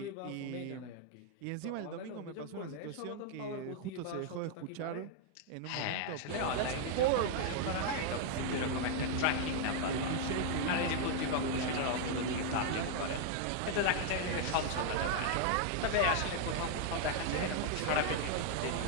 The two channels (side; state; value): both; different; correlation 0.00